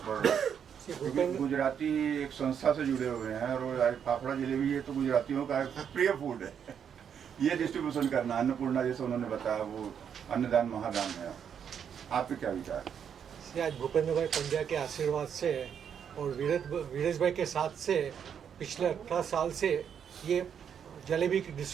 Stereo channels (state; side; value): quieter; left; 8.0 dB